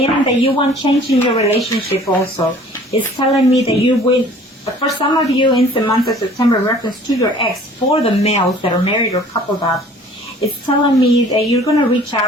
that you want change in your relationship also. It's telling me that you will, for some of you in the month of September, in reference to your ex, for the males that are married or coupled up, it's telling me that you're going to reach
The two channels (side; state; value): both; normal; correlation 0.51